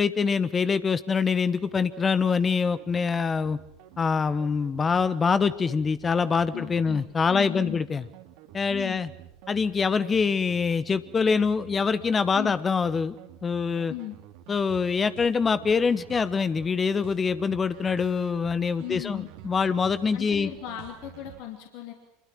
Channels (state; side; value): quieter; right; 5.1 dB